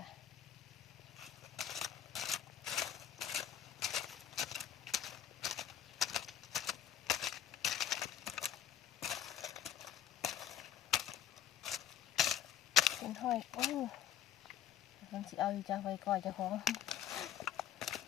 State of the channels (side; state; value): right; quieter; 10.1 dB